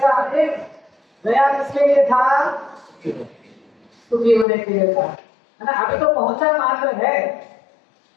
एक गया किसके लिए था? सुखी होने के लिए था, है ना। अभी तो पहुंचा मात्र है,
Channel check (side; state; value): right; drops out; at 4.5 s